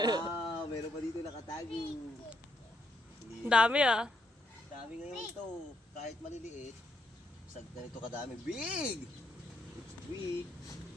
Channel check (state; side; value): normal; both; correlation 0.75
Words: Wow, meron pa dito nakatago. Ang dami ah. Dami ngayon ito. Kahit maliliit. Sa ganito kadami. Big! It's big.